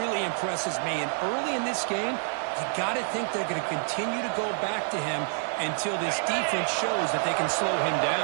impresses me. And early in this game, you got to think they're going to continue to go back to him until this defense shows that they can slow him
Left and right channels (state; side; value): silent; left; 59 dB below the other